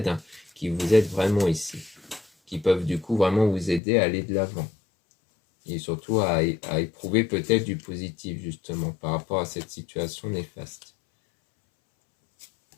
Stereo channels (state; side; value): drops out; right; at 3.8 s